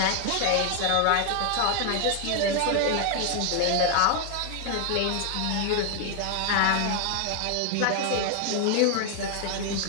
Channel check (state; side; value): different; both; correlation 0.00